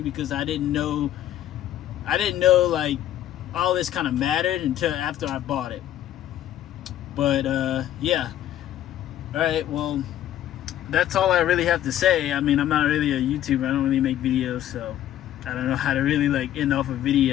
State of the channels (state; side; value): quieter; right; 12.1 dB